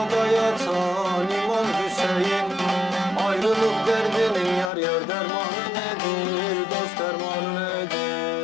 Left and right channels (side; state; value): right; drops out; at 4.7 s